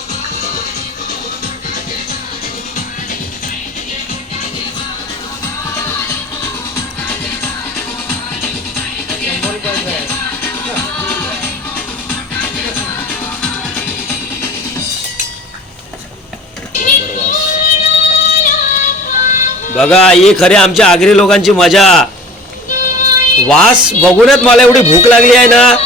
बघा ही खरी आमच्या आगरी लोकांची मजा. वास बघूनच मला एवढी भूक लागली आहे ना,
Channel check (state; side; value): normal; both; correlation 0.43